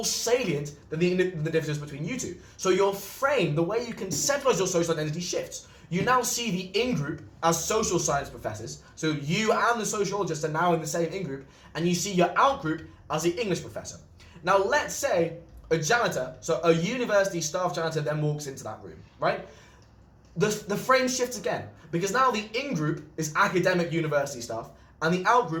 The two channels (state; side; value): identical; both; correlation 1.00